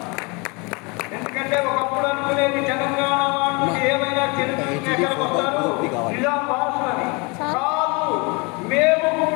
ఎందుకంటే ఒకప్పుడు అనుకునేది తెలంగాణ వాళ్ళు ఏమైనా తిరుగుతుంటే ఎక్కడికి వస్తారు నిజాం వారసులని కాదు, మేము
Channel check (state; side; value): quieter; right; 29.1 dB